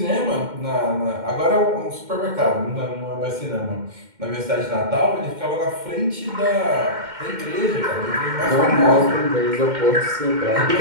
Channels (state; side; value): late; left; 2.1 ms